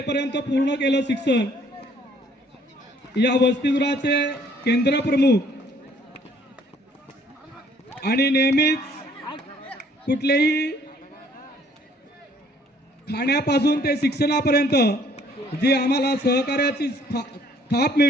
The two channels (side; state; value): both; normal; correlation 0.61